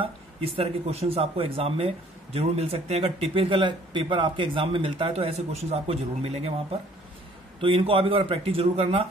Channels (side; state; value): both; normal; correlation 0.57